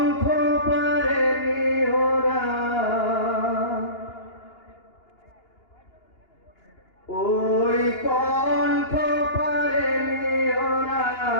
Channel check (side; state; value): right; late; 2.8 ms